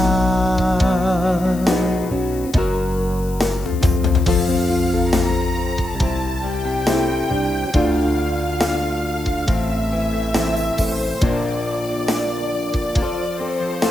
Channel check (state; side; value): noise; left; hiss, 18 dB below the sound